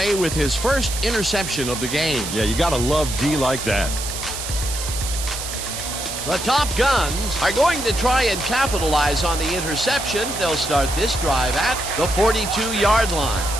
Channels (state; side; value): noise; right; hiss, 6 dB below the sound